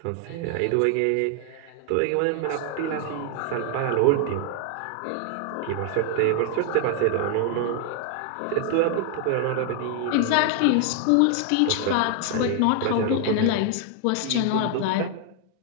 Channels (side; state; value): both; different; correlation 0.00